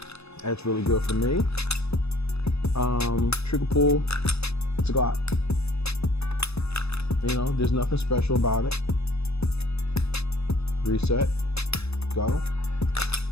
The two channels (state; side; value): late; right; 0.79 ms